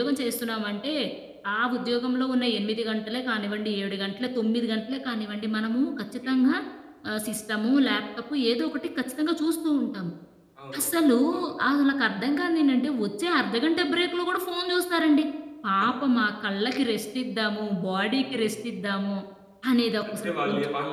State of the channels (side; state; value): both; identical; correlation 1.00